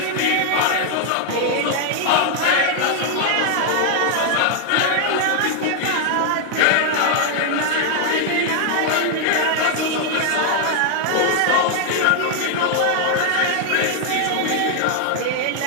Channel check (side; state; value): both; different; correlation 0.00